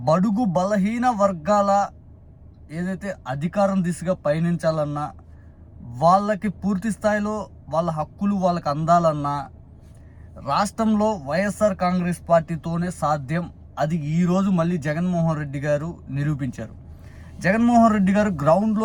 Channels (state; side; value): identical; both; correlation 1.00